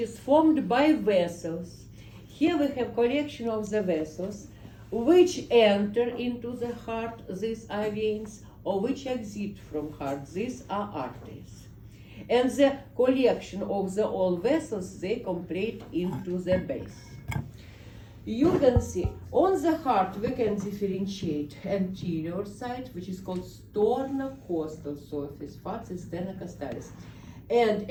formed by vessels. Here we have collection of the vessels which enter into the heart, these are veins, or which exit from heart, these are arteries. And the collection of the all vessels, they complete into the base. You can see on the heart we can differentiate anterior side, which is called sternocostal surface, facet sternocostallis, and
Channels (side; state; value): both; identical; correlation 1.00